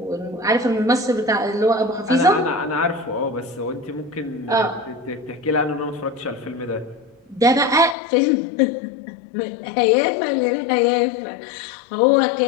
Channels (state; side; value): drops out; right; at 8.0 s